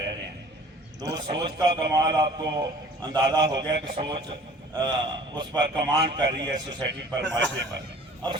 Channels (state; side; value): normal; both; correlation 0.49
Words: رہے ہیں۔ تو سوچ کا کمال آپ کو اندازہ ہو گیا کہ سوچ اس پر کمانڈ کر رہی ہے، سوسائٹی پر، معاشرے پر۔ اب